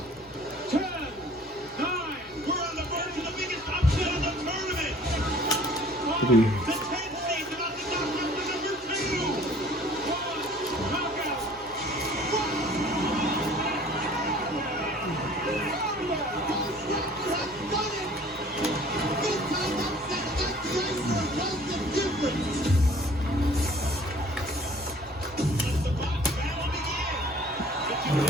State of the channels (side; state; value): both; normal; correlation 0.51